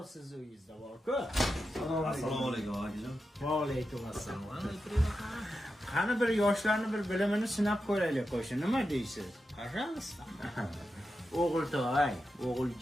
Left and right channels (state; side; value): normal; both; correlation 0.89